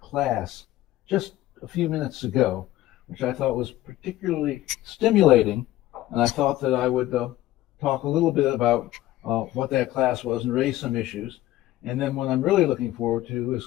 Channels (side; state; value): right; quieter; 15.5 dB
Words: just a few minutes ago, which I thought was particularly stimulating, and I thought that I would talk a little bit about what that class was and raise some issues. And then what I'm really looking forward to is